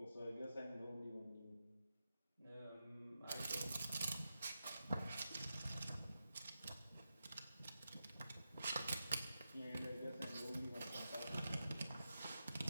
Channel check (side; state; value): both; inverted; correlation -0.90